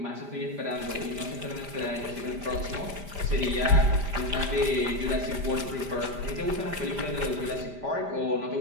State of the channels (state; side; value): late; left; 5.0 ms